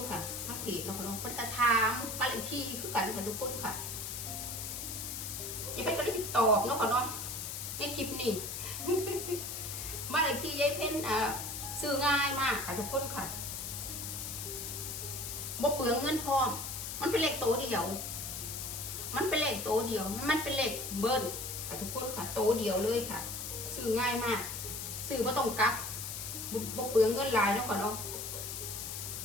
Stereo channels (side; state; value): left; noise; hiss, 5 dB below the sound